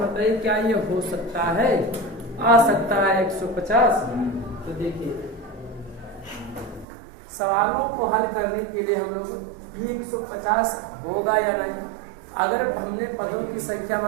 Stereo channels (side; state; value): left; drops out; at 6.9 s